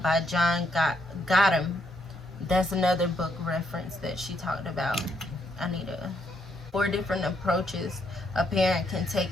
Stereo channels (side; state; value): both; normal; correlation 0.75